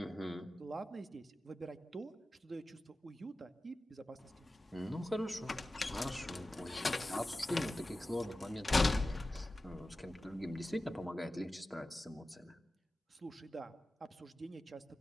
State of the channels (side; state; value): both; normal; correlation 0.95